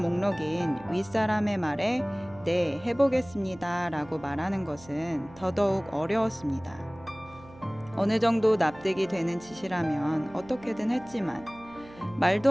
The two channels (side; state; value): right; noise; hum, 21 dB below the sound